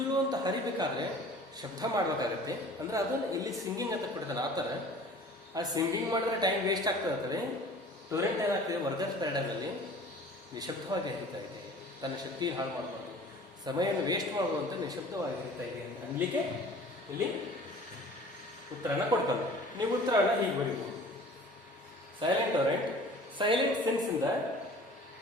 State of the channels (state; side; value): normal; both; correlation 0.46